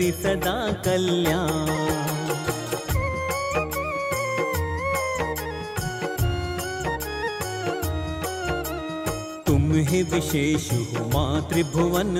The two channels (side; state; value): both; identical; correlation 1.00